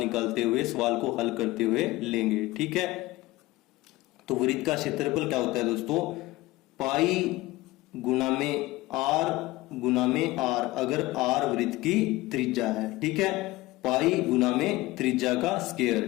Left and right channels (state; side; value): quieter; right; 19.4 dB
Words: हुए, सवाल को हल करते हुए लेंगे, ठीक है। तो वृत्त का क्षेत्रफल क्या होता है दोस्तों, पाई गुना में r, अगर r वृत्त की त्रिज्या है, ठीक है। पाई गुना में त्रिज्या का